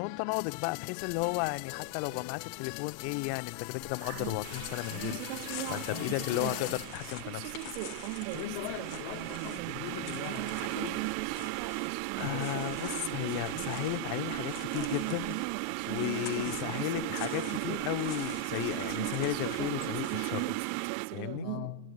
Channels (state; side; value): different; both; correlation 0.00